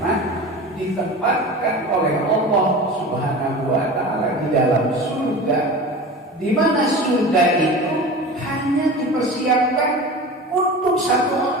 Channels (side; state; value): both; normal; correlation 0.33